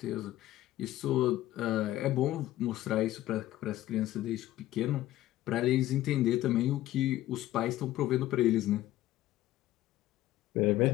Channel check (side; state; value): right; quieter; 14.9 dB